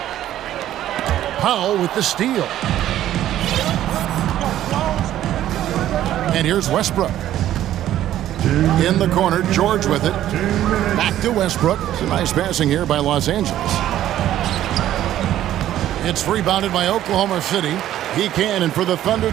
Powell with the steal. And here's Westbrook. In the corner, George with it. Back to Westbrook. It's a nice passing here by Los Angeles. It's rebounded by Oklahoma City. He can, and for the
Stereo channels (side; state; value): left; quieter; 12.5 dB